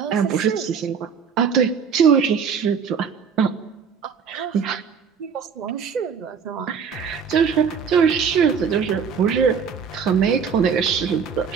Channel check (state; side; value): quieter; left; 6.5 dB